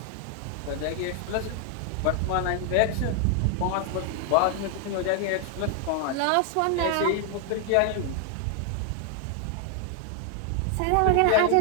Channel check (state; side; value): different; both; correlation 0.00